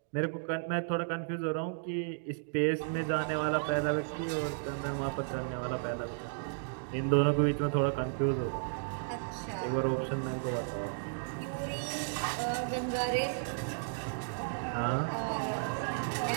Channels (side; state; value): left; silent; digital silence